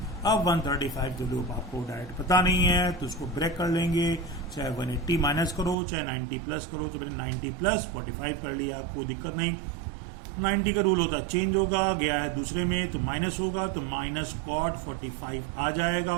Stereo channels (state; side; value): drops out; left; at 5.8 s